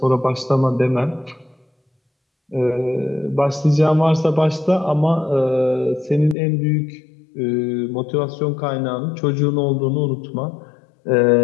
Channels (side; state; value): right; drops out; at 6.4 s